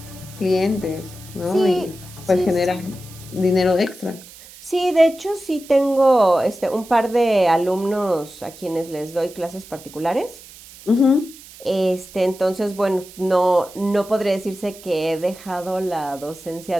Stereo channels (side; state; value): right; noise; hiss, 19 dB below the sound